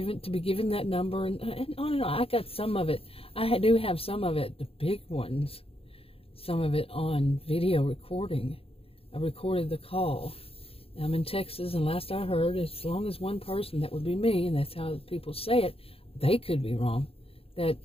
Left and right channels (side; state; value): right; late; 0.28 ms